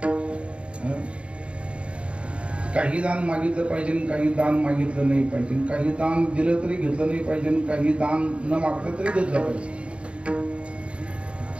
काही दान मागितलं पाहिजे, काही दान मागितलं नाही पाहिजे. काही दान दिलं तरी घेतलं नाही पाहिजे, काही दान न मागलं तरी घेतलं पाहिजे.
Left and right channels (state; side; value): late; left; 0.059 ms